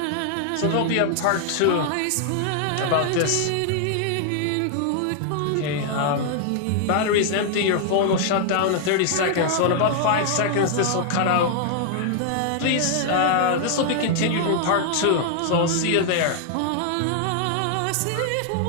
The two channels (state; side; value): different; both; correlation 0.00